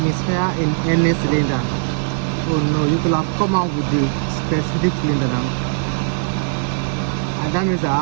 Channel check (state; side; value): silent; left; digital silence